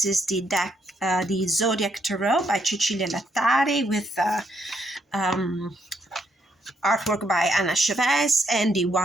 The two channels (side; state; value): both; normal; correlation 0.74